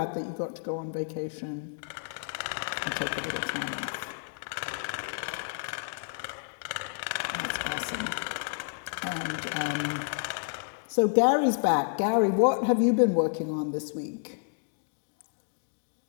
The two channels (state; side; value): silent; right; digital silence